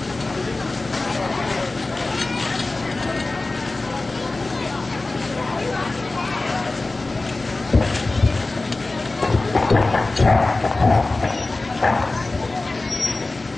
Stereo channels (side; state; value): right; quieter; 3.2 dB